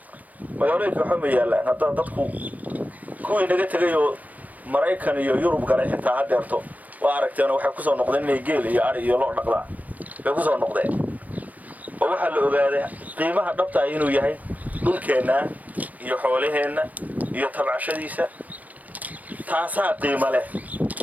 waxba ma yaalaan hadda dadku kuwii naga tegay oo Maraykan iyo Yurub galay xitaa hadeerto waa aragteen waxay ku soo noqdeen inay geel iyo ari iyo loo dhaqdaan bay ku soo noqdeen oo waxa la ogaaday qiimaha dhabta ah inuu yahay dhulkeena iyo xoolaheena iyo tabcashadiisa taasaa qiimo leh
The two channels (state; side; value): late; left; 0.075 ms